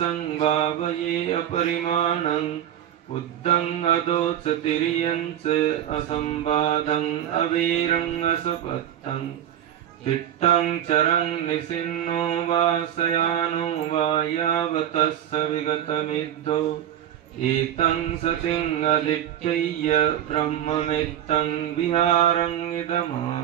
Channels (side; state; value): left; quieter; 10.9 dB